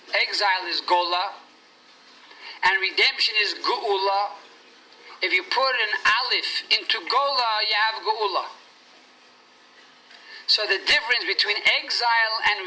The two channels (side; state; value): both; identical; correlation 1.00